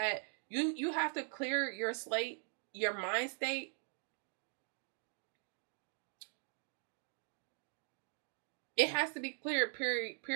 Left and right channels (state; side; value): silent; left; 50 dB below the other